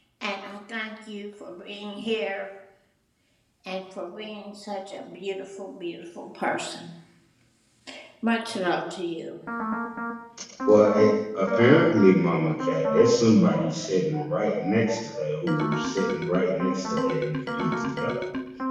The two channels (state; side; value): identical; both; correlation 1.00